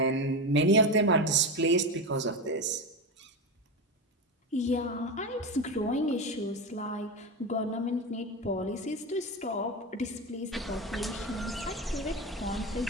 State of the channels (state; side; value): normal; both; correlation 0.18